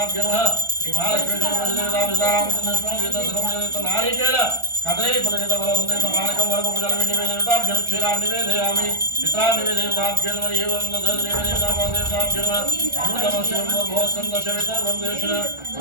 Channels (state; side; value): late; left; 1.4 ms